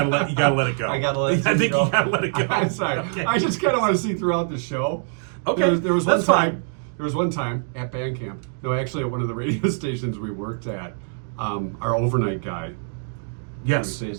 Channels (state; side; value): silent; left; digital silence